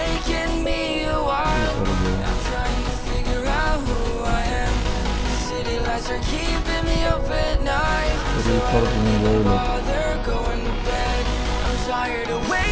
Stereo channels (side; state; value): both; identical; correlation 1.00